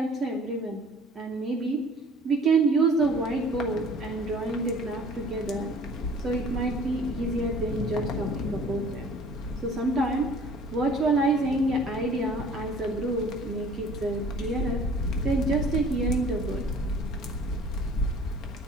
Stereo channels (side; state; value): both; normal; correlation 0.50